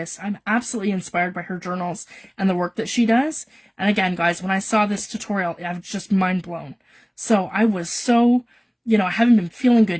I'm absolutely inspired by her journals and the work that she does. And again, guys, when I saw this tutorial, I was just mind blown. So I was so, I haven't been feeling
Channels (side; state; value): both; identical; correlation 1.00